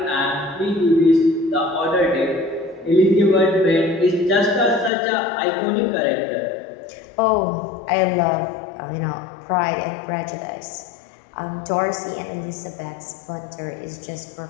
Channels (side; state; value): right; drops out; at 4.9 s